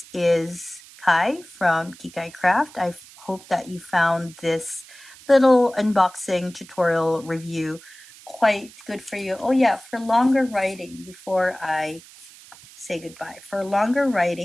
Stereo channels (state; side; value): noise; right; hiss, 21 dB below the sound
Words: is Kai from Kikai Craft. I hope that you found this little unboxing tutorial review quite good for you. Oh yeah, for longer writing, before I say goodbye, for longer